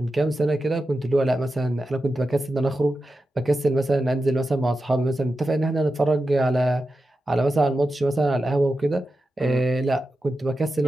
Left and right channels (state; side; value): normal; both; correlation 0.91